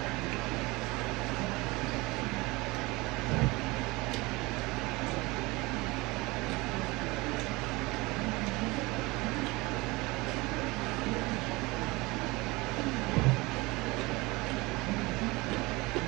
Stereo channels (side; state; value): left; quieter; 23.1 dB